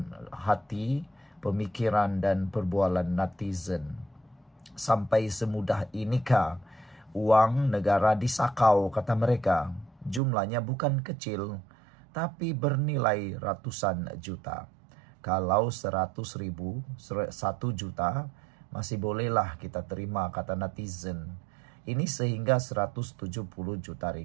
hati, pemikiran dan perbualan netizen. Sampai semudah inikah uang negara disakau, kata mereka? Jumlahnya bukan kecil, tapi bernilai ratusan juta. Kalau 100.000, 1 juta, masih bolehlah kita terima, kata netizen. Ini sehingga 170 juta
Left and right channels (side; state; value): left; drops out; at 10.2 s